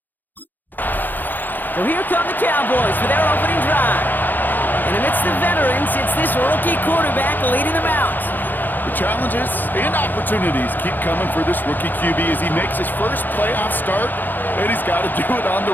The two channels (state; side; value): late; right; 0.088 ms